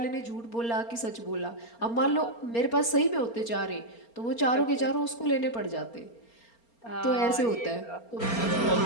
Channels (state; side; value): late; right; 4.3 ms